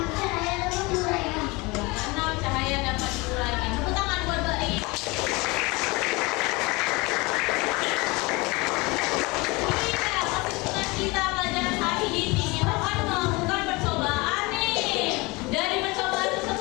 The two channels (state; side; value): quieter; right; 24.7 dB